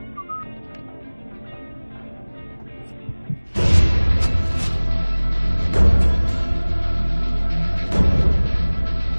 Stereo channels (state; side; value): inverted; both; correlation -1.00